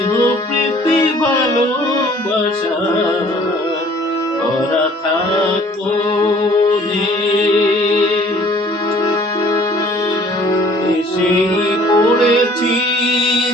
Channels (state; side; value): normal; both; correlation 0.54